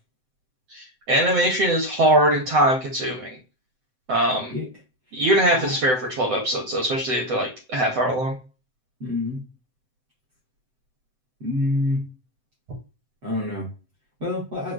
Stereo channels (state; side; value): late; left; 7.8 ms